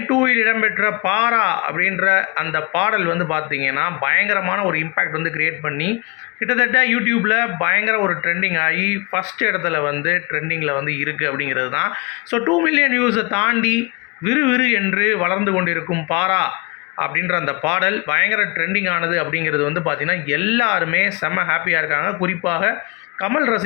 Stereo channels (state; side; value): quieter; right; 29.4 dB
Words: 2ல் இடம்பெற்ற பாரா அப்படின்ற அந்த பாடல் வந்து பார்த்திங்கன்னா பயங்கரமான ஒரு இம்பேக்ட் வந்து கிரியேட் பண்ணி கிட்டத்தட்ட யூடியூப்பில் பயங்கர ஒரு ட்ரெண்டிங் ஆகி ஃபஸ்ட் இடத்துல வந்து ட்ரெண்டிங்கில் வந்து இருக்குது அப்படிங்கிறது தான். ஸோ 2 மில்லியன் வியூஸை தாண்டி விறுவிறு என்று வளர்ந்து கொண்டிருக்கும் பாரா அப்படின்ற அந்த பாடல் பயங்கர ட்ரெண்டிங் ஆனது அப்படிங்கிறது வந்து பார்த்திங்கன்னா எல்லாருமே செம்ம ஹாப்பியாக இருக்காங்க. குறிப்பாக கமல்